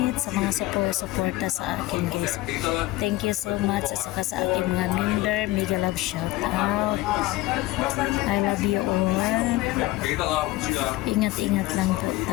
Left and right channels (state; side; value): quieter; right; 18.0 dB